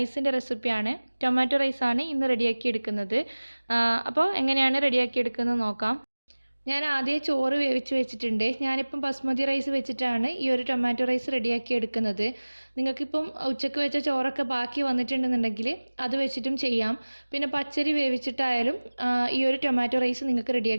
റെസിപ്പിയാണ്. ടൊമാറ്റോ റൈസാണ് ഇന്ന് റെഡിയാക്കി എടുക്കുന്നത്. അപ്പോൾ എങ്ങനെയാണ് റെഡിയാക്കി എടുക്കുന്നത് നോക്കാം. ഞാൻ ആദ്യം ചോറ് വേവിച്ച് വെച്ചിട്ടുണ്ട്. ഞാനിപ്പം ബസ്മതി റൈസ് വെച്ചിട്ടാണ് ഈ ഒരു ടൊമാറ്റോ റൈസ് റെഡിയാക്കി എടുക്കുന്നത്. നിങ്ങൾക്കിപ്പം ഉച്ചയ്ക്ക് വെച്ച ചോറൊക്കെ ബാക്കി വന്നിട്ടുണ്ടെന്നുണ്ടെങ്കിൽ അത് വെച്ചിട്ടും ചെയ്യാം. പിന്നെ പച്ചരി വേവിച്ചിട്ടായാലും ഈ ഒരു ടൊമാറ്റോ റൈസ് നിങ്ങൾക്ക്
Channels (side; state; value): both; inverted; correlation -1.00